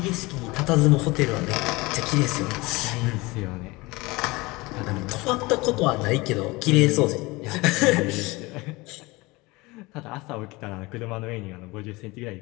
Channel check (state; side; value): quieter; right; 22.9 dB